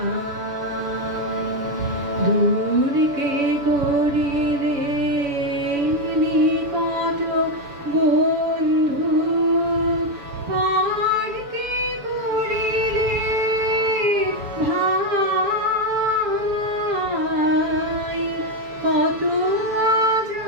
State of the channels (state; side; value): late; left; 7.0 ms